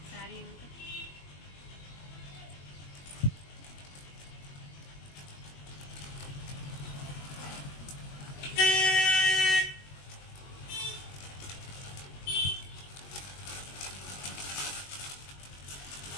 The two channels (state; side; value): late; right; 21 ms